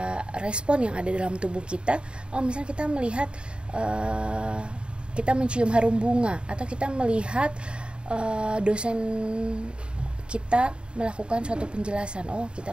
respon yang ada dalam tubuh kita, misalnya kita melihat kita mencium harum bunga atau kita melihat dosen kita melakukan suatu penjelasan,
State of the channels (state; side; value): late; left; 0.053 ms